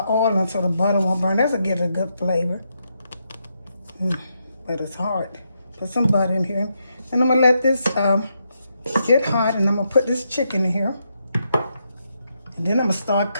in so the butter won't burn. That'll get a good flavor. But it's hard. Put some butter in here. And I'm gonna let this get hot, and I'm gonna put this chicken in here. And then I'm gonna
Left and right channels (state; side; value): inverted; both; correlation -0.81